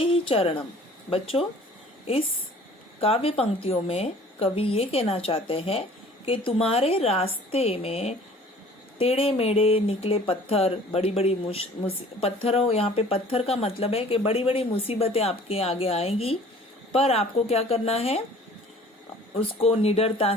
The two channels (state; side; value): normal; both; correlation 0.50